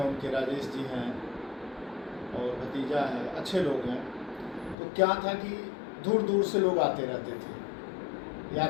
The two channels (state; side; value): drops out; right; at 4.8 s